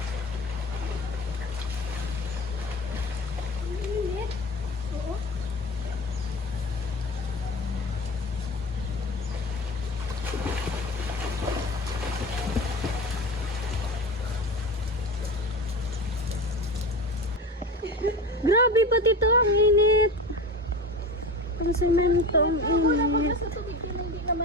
Grabe pati to, ang init. Ang semento, ang init.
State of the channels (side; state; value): both; normal; correlation 0.30